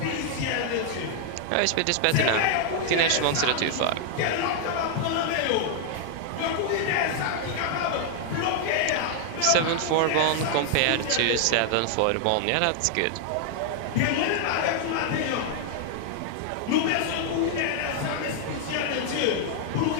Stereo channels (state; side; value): different; both; correlation 0.00